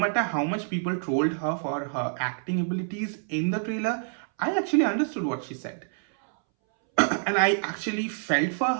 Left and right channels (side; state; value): left; silent; 60 dB below the other